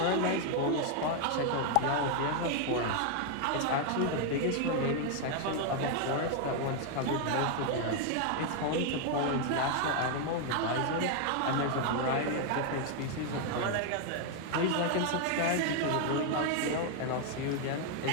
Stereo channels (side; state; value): both; different; correlation 0.00